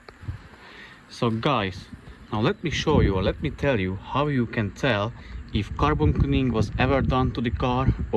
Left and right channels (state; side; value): identical; both; correlation 1.00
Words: So guys, now let me show you, or let me tell you how you can tell if carbon cleaning was ever done to the car,